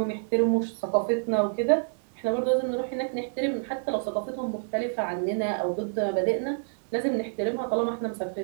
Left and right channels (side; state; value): left; silent; digital silence